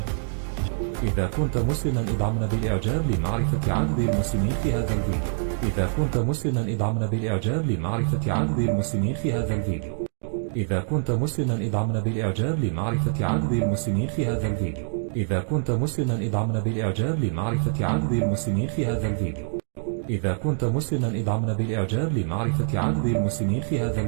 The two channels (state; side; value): silent; left; digital silence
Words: إذا كنت مسلما ادعمنا بالإعجاب لمعرفة عدد المسلمين في هذا الفيديو. إذا كنت مسلما ادعمنا بالإعجاب لمعرفة عدد المسلمين في هذا الفيديو. إذا كنت مسلما ادعمنا بالإعجاب لمعرفة عدد المسلمين في هذا الفيديو. إذا كنت مسلما ادعمنا بالإعجاب لمعرفة عدد المسلمين في هذا الفيديو. إذا كنت مسلما ادعمنا بالإعجاب لمعرفة عدد المسلمين في هذا